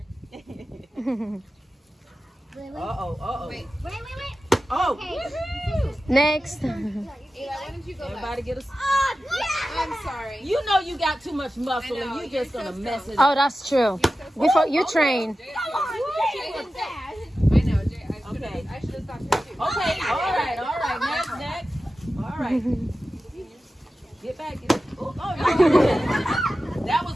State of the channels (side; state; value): both; normal; correlation 0.94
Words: Uh-oh. Wait. Oh, Next. everybody get a... I'm sorry. You know you got too much muscle and you just gonna mess it up. Oh, that's true. Before you train. I know, Jay. Okay. I should have stopped here too. Okay, all right. Next. All right. Get back. Oh, no. That